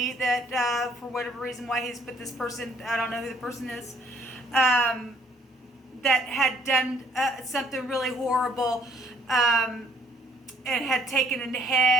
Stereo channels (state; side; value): normal; both; correlation 0.62